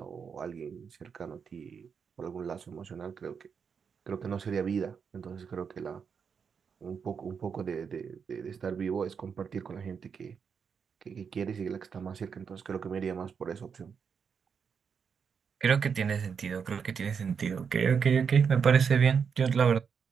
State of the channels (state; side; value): quieter; left; 6.5 dB